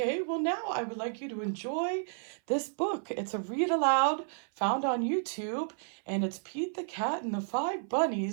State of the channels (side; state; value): left; silent; 57 dB below the other